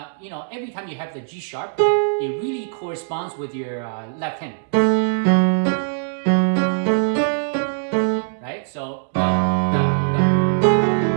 every time you have the G sharp, it really corresponds with your left hand. Right? So,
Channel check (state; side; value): silent; left; 65 dB below the other